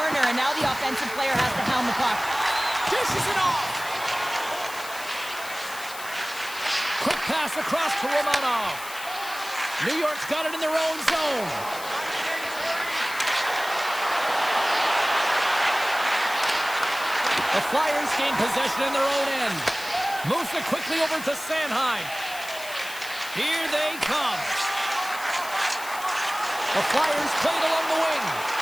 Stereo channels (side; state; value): left; noise; hiss, 13 dB below the sound